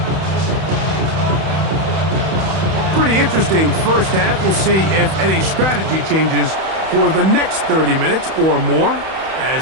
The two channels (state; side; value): late; left; 31 ms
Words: Pretty interesting first half. We'll see if any strategy changes for the next 30 minutes or more